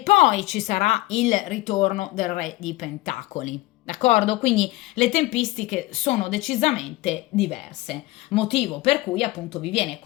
ci sarà il ritorno del re di pentacoli. D'accordo? Quindi le tempistiche sono decisamente diverse, motivo per cui appunto vi viene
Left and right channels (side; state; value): right; quieter; 19.2 dB